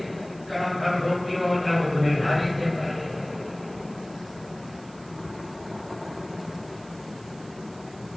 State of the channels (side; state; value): right; noise; hiss, 24 dB below the sound